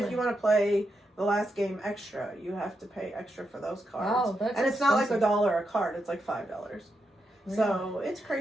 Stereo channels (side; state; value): both; normal; correlation 0.84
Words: Really? you want to play the last game extra, you have to pay extra for those cards. Wow, that's and it's not like expensive. $1 a card; it's like $5. So it's